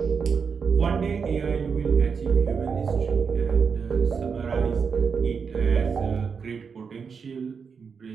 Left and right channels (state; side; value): quieter; left; 5.9 dB